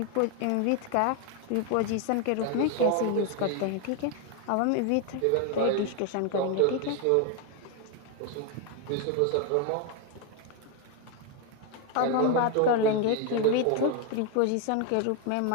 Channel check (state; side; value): different; both; correlation 0.01